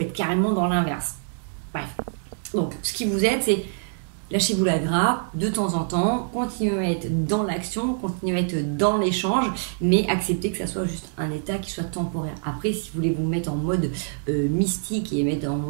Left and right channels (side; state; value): left; silent; digital silence